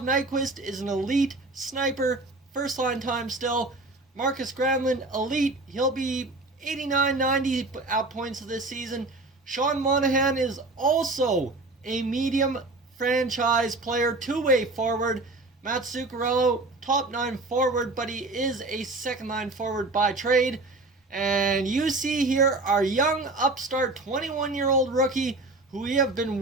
Nyquist is an elite sniper, first line time still. Marcus Granlund, elite, he'll be 89-90 at points of this season. Sean Monahan is also a medium franchise player, two-way forward. Matt Zuccarello, top 9 forward, but he is a second line forward by trade. And you see here our young upstart 21-year-old rookie who we have been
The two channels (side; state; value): left; quieter; 3.0 dB